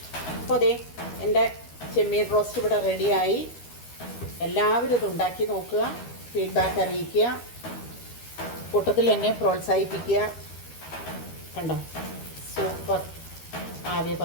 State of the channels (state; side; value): late; right; 12 ms